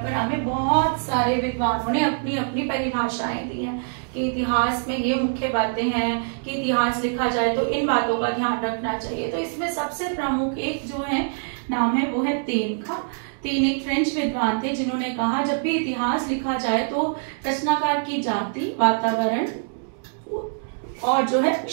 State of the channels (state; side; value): silent; left; digital silence